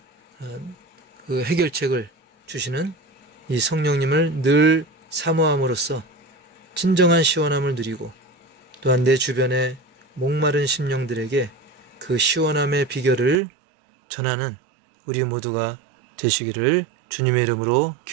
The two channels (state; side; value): drops out; left; at 13.4 s